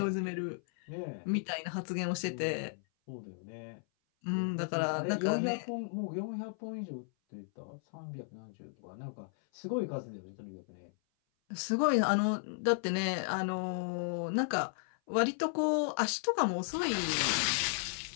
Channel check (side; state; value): right; silent; 55 dB below the other